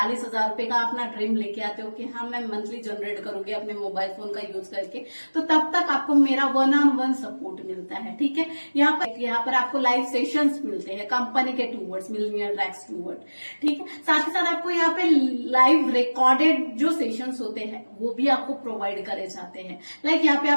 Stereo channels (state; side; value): inverted; both; correlation -1.00